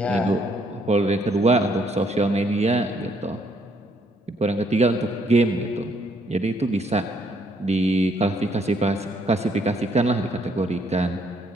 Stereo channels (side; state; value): both; normal; correlation 0.69